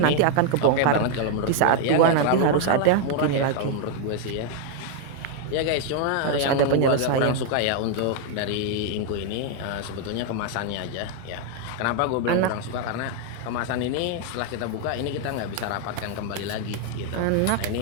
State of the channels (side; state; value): both; different; correlation 0.00